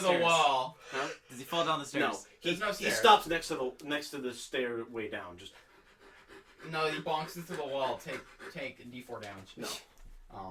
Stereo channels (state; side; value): identical; both; correlation 1.00